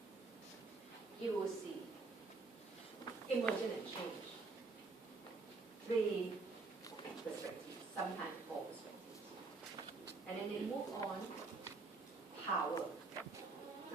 you will see emergent and change, 3 perspectives, sometimes 4 perspectives. And then they move on, power,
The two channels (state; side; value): quieter; left; 3.9 dB